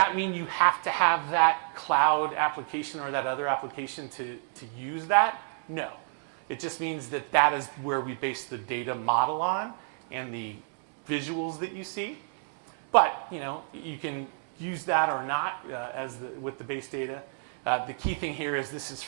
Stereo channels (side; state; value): left; silent; 58 dB below the other